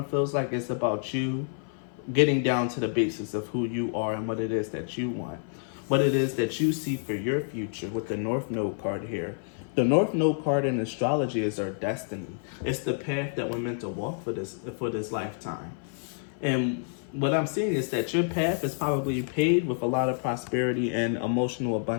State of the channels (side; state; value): right; silent; 55 dB below the other